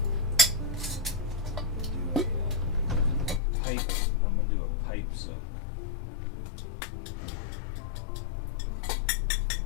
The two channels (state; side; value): drops out; right; at 3.4 s